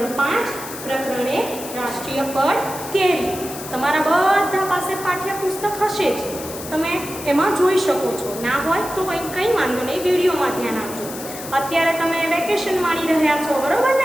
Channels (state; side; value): noise; left; hiss, 11 dB below the sound